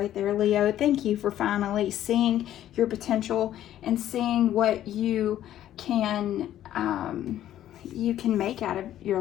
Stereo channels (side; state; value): right; quieter; 12.1 dB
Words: there, Leo. Thank you for finally seeing your potential and seeing what you can make out of your